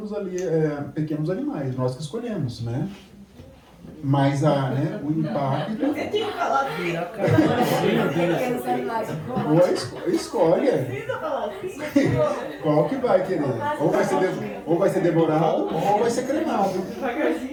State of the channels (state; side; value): identical; both; correlation 1.00